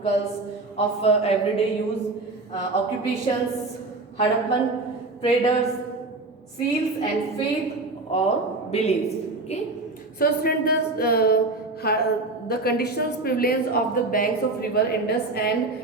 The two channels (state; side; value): quieter; left; 3.3 dB